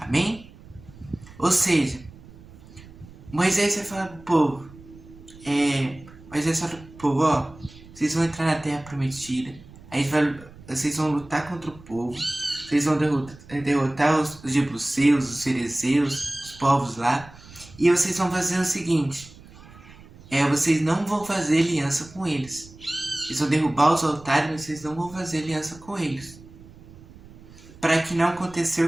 Ou seja, Moisés vai falar pro povo, Moisés fala pro povo, vocês vão entrar na Terra Prometida, aí vocês vão lutar contra o povo, vocês vão derrotar os jebuseus, os ferezeus, os povos lá, e vocês vão fazer o seguinte, vocês não vão fazer aliança com eles. Vocês vão derrubar os altares, mas vocês não vão fazer aliança com eles. Para que não aconteça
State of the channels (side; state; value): right; noise; rumble, 20 dB below the sound